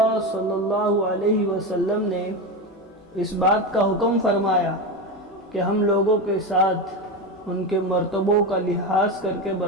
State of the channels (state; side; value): normal; both; correlation 0.18